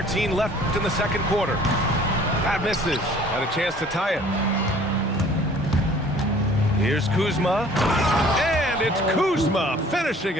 left in the second quarter. That misses. Had a chance to tie it. Here's Kuzma. And it's Kuzma finishing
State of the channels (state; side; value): normal; both; correlation 0.52